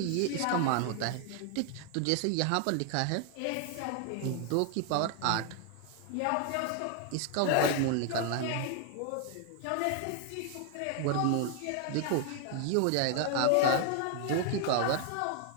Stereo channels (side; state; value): both; different; correlation 0.00